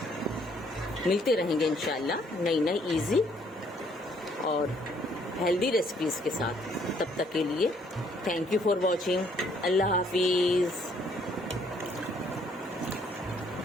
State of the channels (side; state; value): both; normal; correlation 0.65